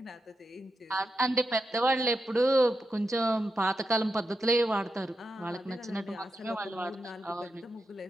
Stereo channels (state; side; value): normal; both; correlation 0.87